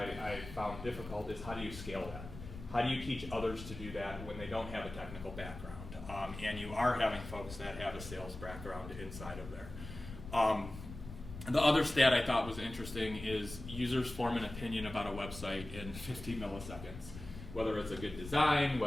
found difficult is how do you scale that? How do you teach others to do that when they don't have a technical background? And you are having folks that have a sales background inside of there. The other stat I thought was interesting is users form an opinion about a website in 50 milliseconds. Whether it's a good design,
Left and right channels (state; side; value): noise; left; rumble, 12 dB below the sound